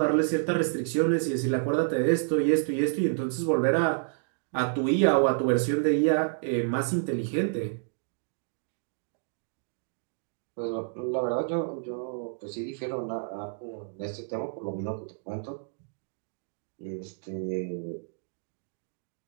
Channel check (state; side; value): silent; left; digital silence